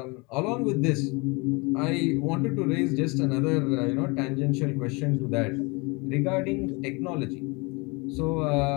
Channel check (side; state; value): right; quieter; 28.0 dB